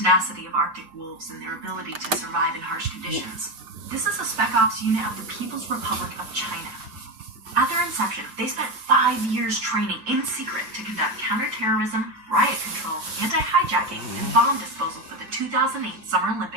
of Arctic wolves and their ability to survive in harsh conditions. This is a Spec Ops unit of the People's Republic of China. At their inception, they spent 5 years training in secret to conduct counterterrorism, riot control, anti-hijacking, and bomb disposal for the 2008 Summer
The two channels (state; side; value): late; left; 6.7 ms